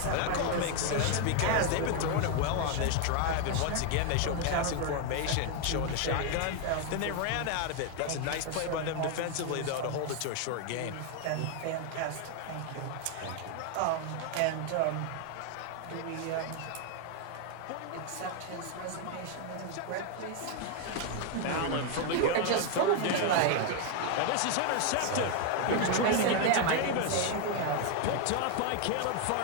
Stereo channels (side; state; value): both; different; correlation 0.00